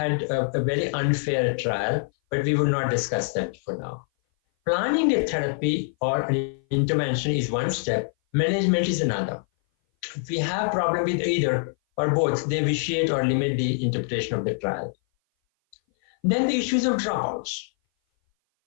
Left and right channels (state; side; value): silent; right; 58 dB below the other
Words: a very unfair trial, but we will not discuss that for now. Planning a therapy or an intervention is one step, management is another. If we have problem with either or both, they vitiate or limit the interpretation of the trial. Then the issues of dropouts.